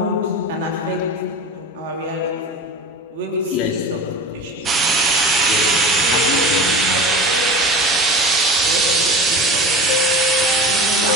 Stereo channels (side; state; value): both; normal; correlation 0.33